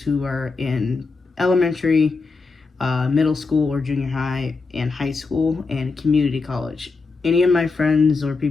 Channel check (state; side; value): quieter; right; 4.2 dB